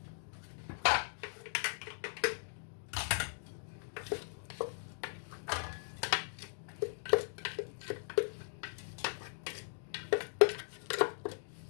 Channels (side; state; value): right; silent; digital silence